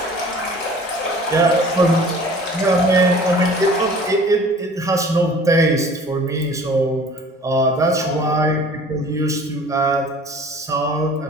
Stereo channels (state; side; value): normal; both; correlation 0.47